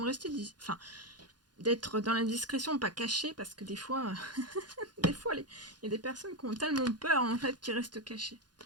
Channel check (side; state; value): left; late; 0.70 ms